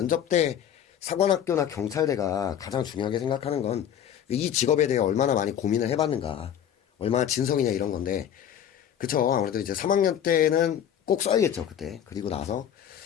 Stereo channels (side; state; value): right; quieter; 9.6 dB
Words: 때 사관학교나 경찰대가 가장 중요하게 생각하는 건 이 직업에 대해 얼마나 많이 고민을 해봤는가, 얼마나 진성이냐 이런 건데, 그쵸. 아무래도 이제 3학년 때는 꼭 써야겠죠, 그때. 그리고 나서